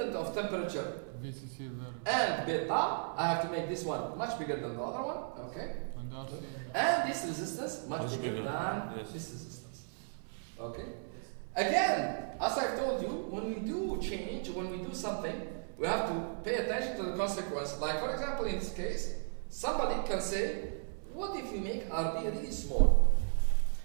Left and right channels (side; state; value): left; silent; 54 dB below the other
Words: of temperature VCC there. and beta, I have to make this one much bigger than the other one. Okay. And RC. And this resistance much bigger than this resistance. Okay. Again, as I've told you, when we do change, when we do something, we have to pay attention to the consequence. Like for example, in this case, somebody can say, what if you make RB really small?